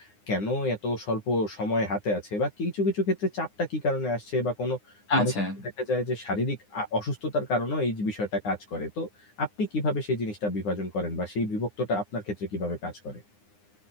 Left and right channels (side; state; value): right; late; 9.7 ms